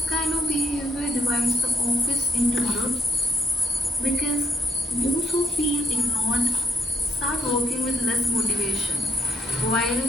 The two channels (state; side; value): normal; both; correlation 0.73